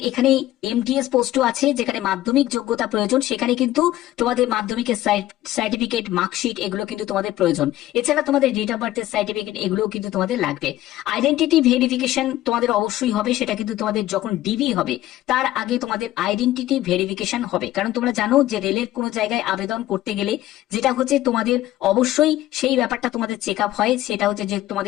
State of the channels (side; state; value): right; quieter; 14.8 dB